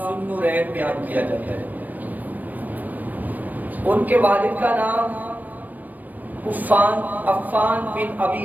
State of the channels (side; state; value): left; late; 0.084 ms